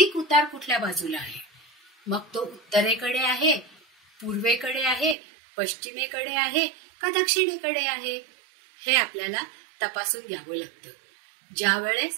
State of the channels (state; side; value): drops out; left; at 5.2 s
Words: उतार कुठल्या बाजूला आहे, मग तो उत्तरेकडे आहे, पूर्वेकडे आहे, पश्चिमेकडे आहे का दक्षिणेकडे आहे, हे आपल्याला तपासून घ्यावं लागतं. ज्या वेळेस